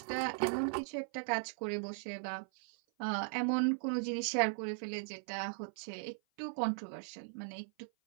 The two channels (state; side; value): silent; left; 52 dB below the other